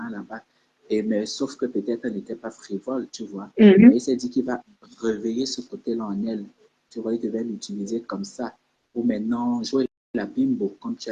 là-bas. Mais sauf que peut-être elle n'était pas frivole, tu vois. Mais il s'est dit qu'il va réveiller ce côté-là en elle. Tu vois, il devait l'utiliser comme ça. Pour maintenant jouer la bimbo, comme tu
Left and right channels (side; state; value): both; identical; correlation 1.00